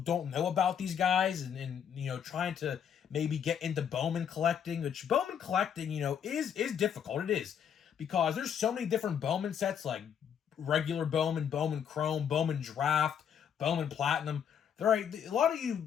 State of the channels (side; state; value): right; quieter; 8.2 dB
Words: know about these guys and trying to maybe get into Bowman collecting, which Bowman collecting, is difficult. It is. Because there's so many different Bowman sets, like regular Bowman, Bowman Chrome, Bowman Draft, Bowman Platinum. They're right. A lot of